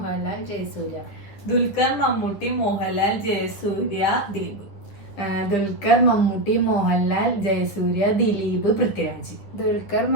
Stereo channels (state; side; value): late; right; 10 ms